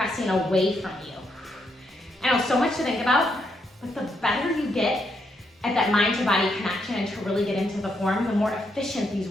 away from you. I know, so much to think about, but the better you get at that mind to body connection and to really get into the form, the more efficient these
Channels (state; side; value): normal; both; correlation 0.78